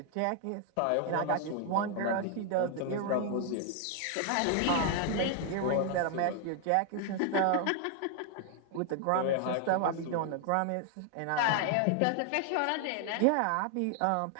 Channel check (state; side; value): different; both; correlation 0.00